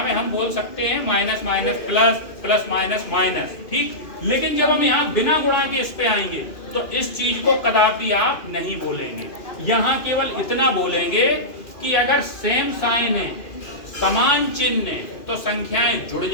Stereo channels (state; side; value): late; right; 2.4 ms